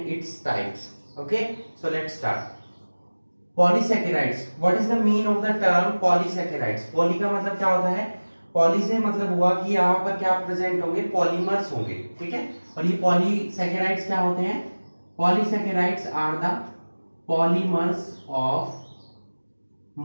its types. Okay, so let's start. Polysaccharides. What is the meaning of the term polysaccharides? Poly का मतलब क्या होता है? Poly से मतलब हुआ कि यहाँ पर क्या प्रेजेंट होंगे, पॉलीमर्स होंगे, ठीक है। और ये पॉलीसैकेराइड्स क्या होते हैं? Polysaccharides are the polymers of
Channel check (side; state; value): both; inverted; correlation -1.00